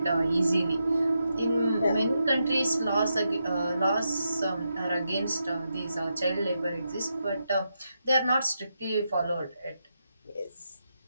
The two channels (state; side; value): inverted; both; correlation -0.84